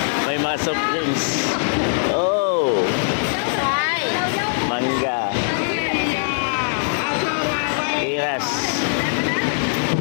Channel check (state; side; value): silent; right; 65 dB below the other